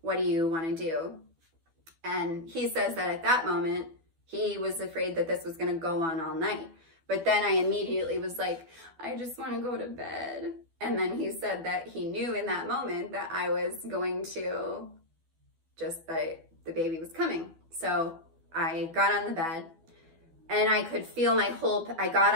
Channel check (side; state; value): left; late; 12 ms